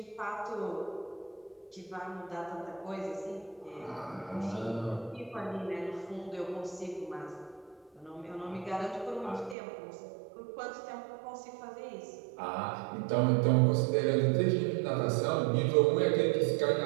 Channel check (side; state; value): left; drops out; at 9.6 s